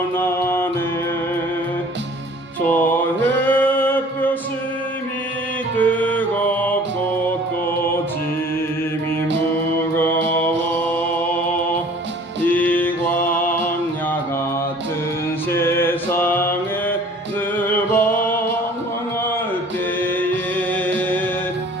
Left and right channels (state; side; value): normal; both; correlation 0.50